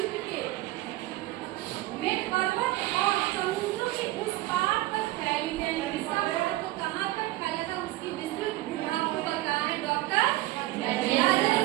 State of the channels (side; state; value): left; quieter; 17.6 dB